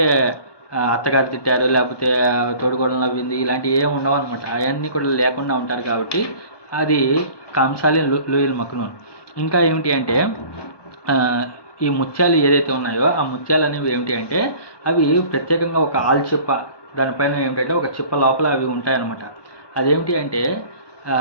అత్తగారు తిట్టారు, లేకపోతే తోడుగోడలు నవ్వింది, ఇలాంటివి ఏమి ఉండవు అనమాట. అవన్నీ కూడా లేకుండా ఉంటారు కాబట్టి అది కాంసాలి లూయిల్ మక్నూన్. ఇంకా ఏమిటి అంటే ఈ ముత్యాలు ఏదైతే ఉన్నాయో ఆ ముత్యాలు అనేవి ఏమిటి అంటే అవి ప్రత్యేకంగా ఒక ఆల్చిప్ప దానిపైన ఏమిటంటే ఒక చిప్ప లోపల అవి ఉంటాయన్నమాట. అదేమిటి అంటే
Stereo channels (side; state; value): right; late; 1.2 ms